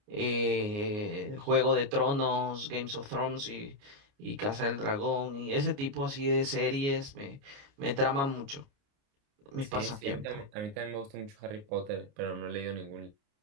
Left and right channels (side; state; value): left; late; 29 ms